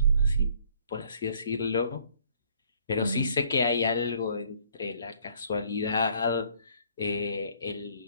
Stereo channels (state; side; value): inverted; both; correlation -0.60